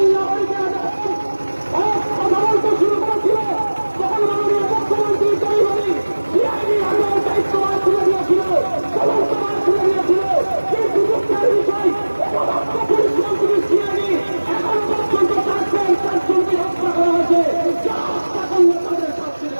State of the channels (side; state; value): both; inverted; correlation -1.00